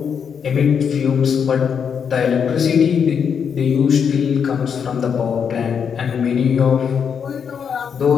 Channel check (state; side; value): quieter; right; 7.1 dB